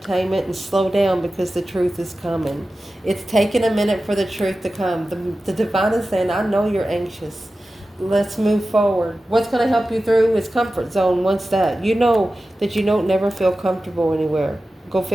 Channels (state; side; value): normal; both; correlation 0.94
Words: and slow down because the truth is coming. It's taking a minute for the truth to come. The Divine is saying, I know you're anxious. Let's move forward. What's going to help you through is comfort zone. Once that, you know that you don't never feel comfortable anywhere. Go